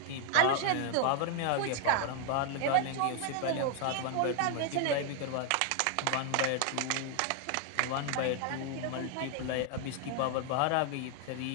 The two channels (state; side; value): different; both; correlation 0.00